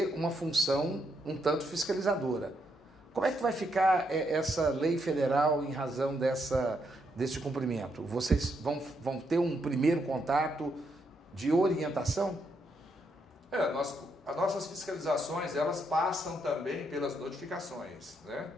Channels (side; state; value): both; normal; correlation 0.78